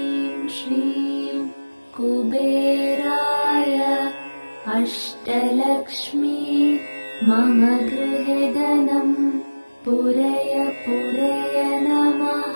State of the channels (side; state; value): both; inverted; correlation -1.00